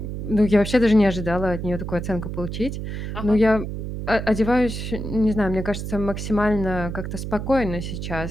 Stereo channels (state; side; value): noise; right; hum, 6 dB below the sound